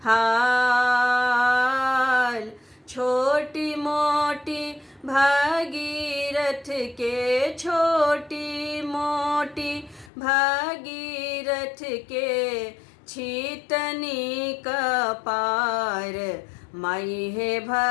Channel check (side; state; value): right; drops out; at 10.1 s